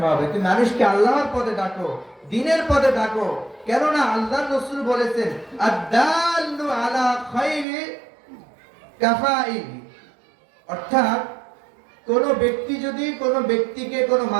হবে, তুমি মানুষকে আল্লাহর পথে ডাকো, দ্বীনের পথে ডাকো। কেননা আল্লাহর রাসূল বলেছেন আদ-দাল্লু আলা খায়রি কাফাইল, অর্থাৎ কোন ব্যক্তি যদি কোন ব্যক্তিকে, কোন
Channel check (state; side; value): drops out; left; at 7.7 s